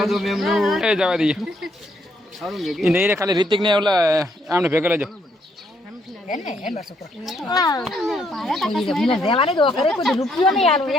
એ જવા દઈએ એ નહીં રે ખાલી રિતિક ને ઓલા આમને ભેગા લેજો રૂપિયો નહીં આલો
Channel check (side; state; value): both; normal; correlation 0.72